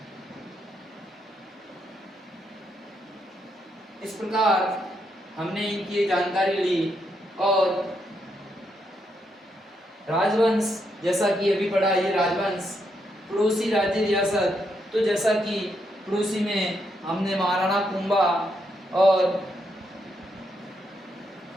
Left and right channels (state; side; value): normal; both; correlation 0.79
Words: इस प्रकार हमने इनकी जानकारी ली। और राजवंश, जैसा कि अभी पढ़ा, ये राजवंश पड़ोसी राज्य रियासत, तो जैसा कि पड़ोसी में हमने महाराणा कुंभा और